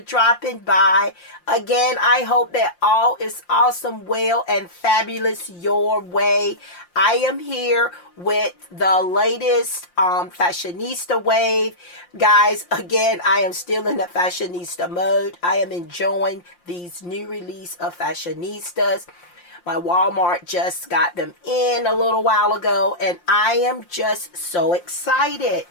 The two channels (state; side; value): late; right; 5.7 ms